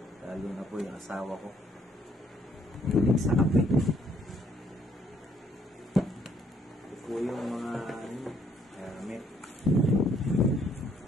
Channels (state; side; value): normal; both; correlation 0.67